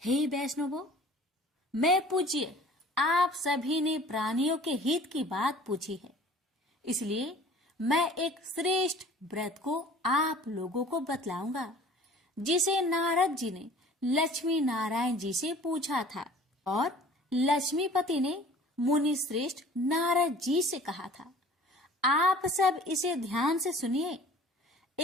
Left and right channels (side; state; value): both; normal; correlation 0.48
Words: हे वैष्णवों, मैं पूज्य आप सभी ने प्राणियों के हित की बात पूछी है, इसलिए मैं एक श्रेष्ठ व्रत को आप लोगों को बतलाऊंगा जिसे नारद जी ने लक्ष्मी नारायण जी से पूछा था और लक्ष्मीपति ने मुनि श्रेष्ठ नारद जी से कहा था। आप सब इसे ध्यान से सुनिए।